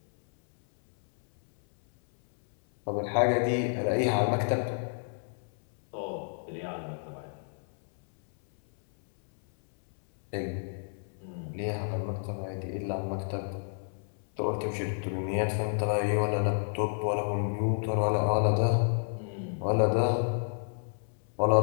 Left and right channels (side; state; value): right; silent; 58 dB below the other